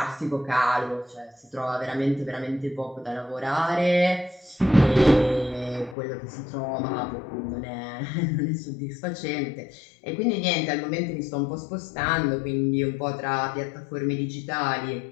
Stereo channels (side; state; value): right; drops out; at 6.0 s